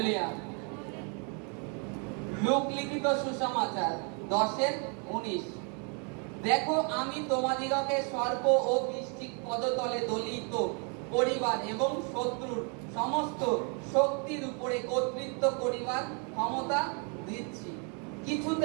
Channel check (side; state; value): left; quieter; 37.2 dB